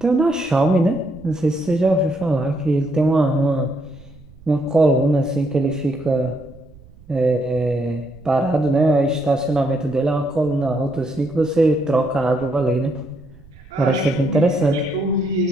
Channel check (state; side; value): noise; right; rumble, 23 dB below the sound